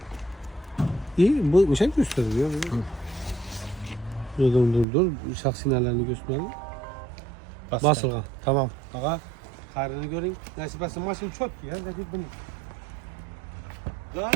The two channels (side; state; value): left; drops out; at 4.9 s